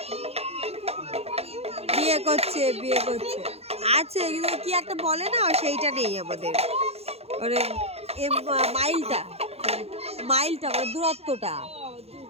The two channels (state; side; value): late; left; 0.30 ms